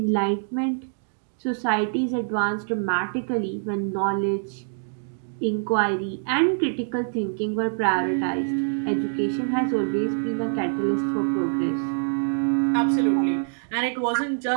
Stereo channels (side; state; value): left; silent; digital silence